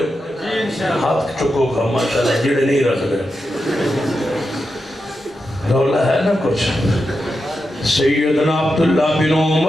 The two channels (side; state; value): both; normal; correlation 0.88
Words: ہاتھ چکو کا ماشاءاللہ جڑے نہیں رکھ دے رولا ہے نا کچھ سیدنا عبداللہ بن